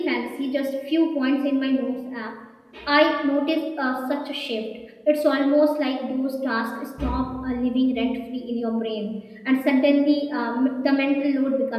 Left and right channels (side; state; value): both; identical; correlation 1.00